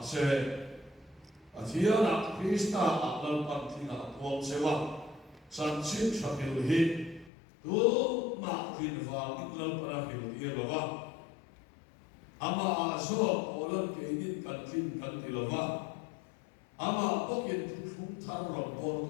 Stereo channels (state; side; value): drops out; right; at 7.3 s